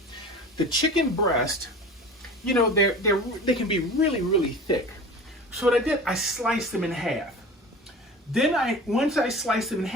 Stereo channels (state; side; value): normal; both; correlation 0.36